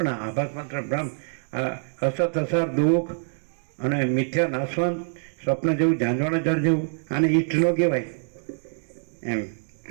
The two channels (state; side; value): silent; left; digital silence